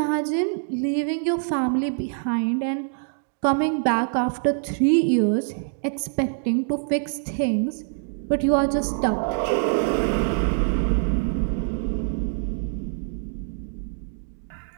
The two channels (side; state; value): left; silent; digital silence